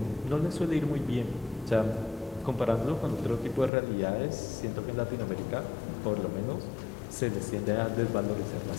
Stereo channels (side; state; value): right; drops out; at 3.7 s